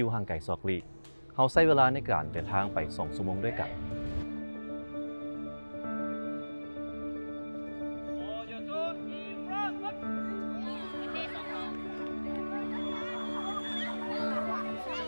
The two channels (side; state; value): both; inverted; correlation -1.00